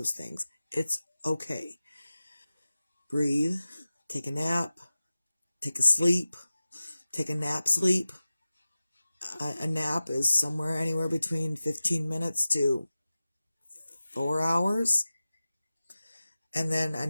things, it's okay. Breathe, take a nap, take a sleep, take a nap sleep. A nap is somewhere anywhere between 15 minutes to 4 hours. And then a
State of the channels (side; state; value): both; inverted; correlation -0.96